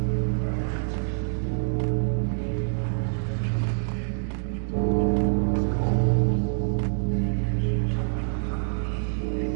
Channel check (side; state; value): left; silent; digital silence